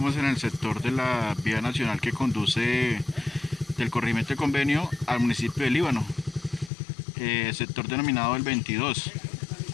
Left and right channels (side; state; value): right; drops out; at 6.7 s